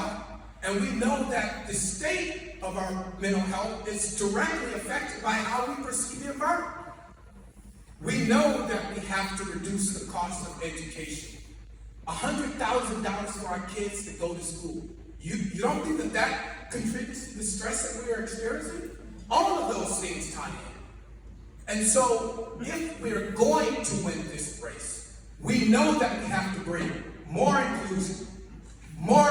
and we know that the state of our mental health is directly affected by how we perceive the environment. We know that we have to reduce the cost of education. $100,000 for our kids to go to school. You don't think that that contributes to the stress that we are experiencing? All of those things tie in. And so, if we're going to win this race, we know that we have to bring more inclusion, more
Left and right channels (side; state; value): both; identical; correlation 1.00